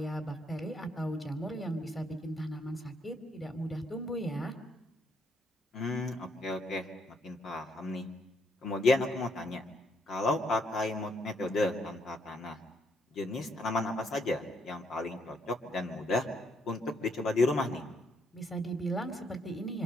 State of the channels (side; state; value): both; normal; correlation 0.72